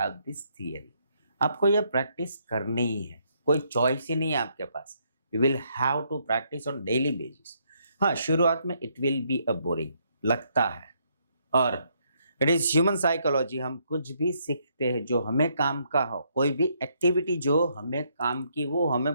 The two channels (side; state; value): both; inverted; correlation -0.73